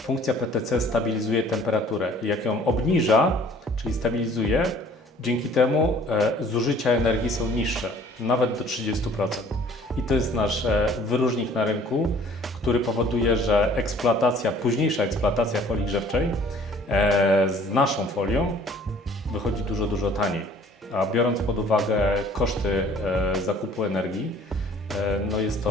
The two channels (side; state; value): both; normal; correlation 0.54